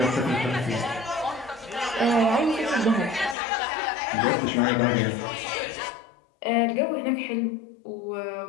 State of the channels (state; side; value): drops out; right; at 3.4 s